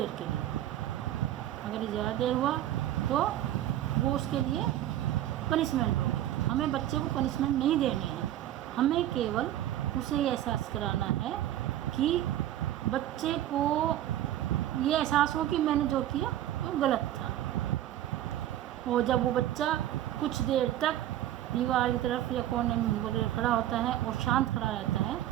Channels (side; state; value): left; quieter; 12.8 dB